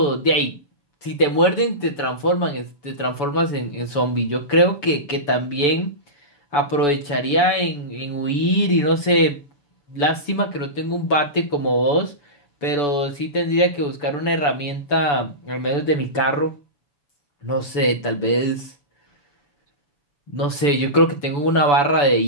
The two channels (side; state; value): right; late; 6.9 ms